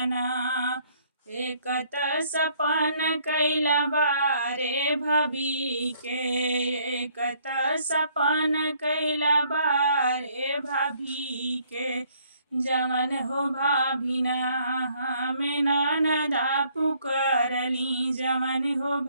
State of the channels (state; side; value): inverted; both; correlation -0.64